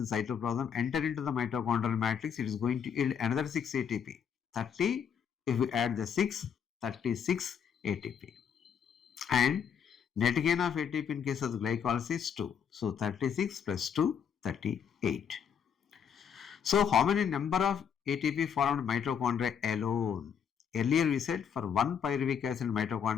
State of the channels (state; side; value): quieter; right; 7.6 dB